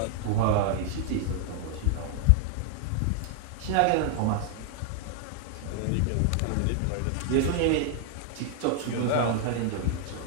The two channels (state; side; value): different; both; correlation 0.00